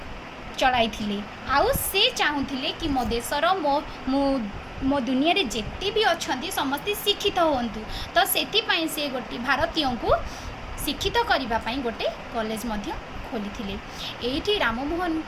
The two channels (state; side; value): identical; both; correlation 1.00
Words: चलाई थिले। आउ से चाहूथिले कि मो देशर मो दुनिया रे जेते भी अछंती समस्ते शिक्षित होंतु। तो सेति पई से गोटे भारतीय को शिक्षित करिबा पई गोटे कॉलेज मध्य खोली एठी राममोहन